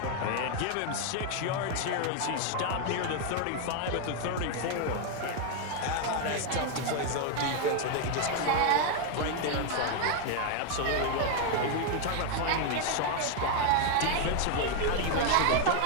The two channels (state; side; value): different; both; correlation 0.01